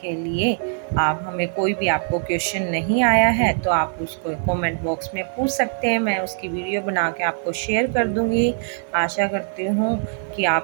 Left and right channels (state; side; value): silent; left; digital silence